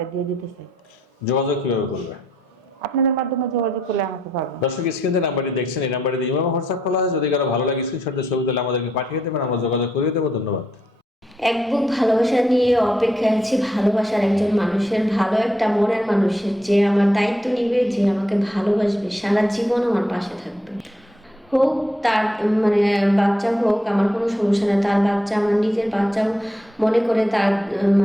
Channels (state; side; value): normal; both; correlation 0.76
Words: দিয়ে দিতে চাই। যোগাযোগ কিভাবে করবে? আপনাদের মাধ্যমে যোগাযোগ করলে আমাকে পাবেন। দর্শক স্ক্রিনে নাম্বারটি দেখছেন, এই নাম্বারে ইমো এবং হোয়াটসঅ্যাপ খোলা আছে। যদি কারো ভালো লাগে স্ক্রিনশটের ছবি তুলে আমাদেরকে পাঠিয়ে দেবেন, আমরা যোগাযোগ করিয়ে দেবো। ধন্যবাদ। এক বুক ভালোবাসা নিয়ে অপেক্ষায় আছি, ভালোবাসার একজন মানুষের, ভালো একটা মনের মানুষের, যে আমার দায়িত্ব নিবে, যে আমাকে ভালোবাসবে, সারা জীবন আমার পাশে থাকবে। হোক তার মানে বাচ্চা হোক, আমার কোনো সমস্যা নেই। তার বাচ্চা আমার নিজের বাচ্চাও মনে করে তার